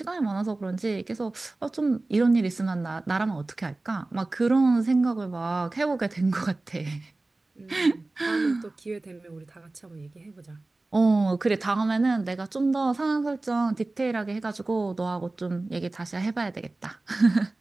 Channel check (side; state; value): left; quieter; 3.1 dB